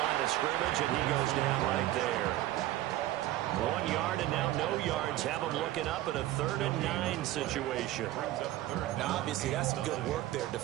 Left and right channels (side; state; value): left; quieter; 15.0 dB